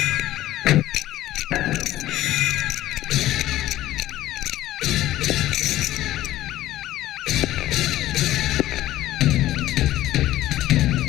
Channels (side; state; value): right; quieter; 14.8 dB